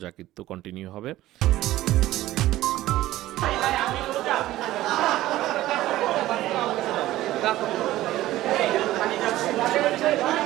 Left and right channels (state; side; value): quieter; left; 15.5 dB